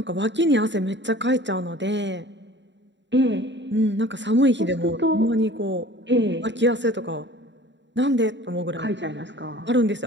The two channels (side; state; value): left; late; 0.53 ms